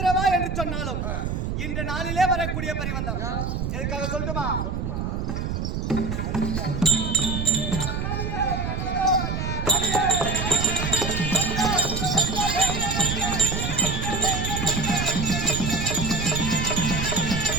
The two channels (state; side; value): noise; right; rumble, 2 dB below the sound